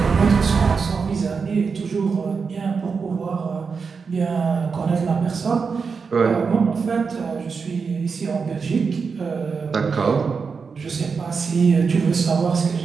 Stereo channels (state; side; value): quieter; left; 5.3 dB